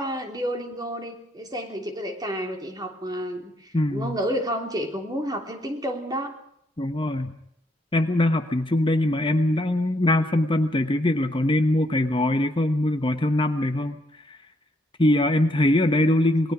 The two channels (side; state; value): both; normal; correlation 0.73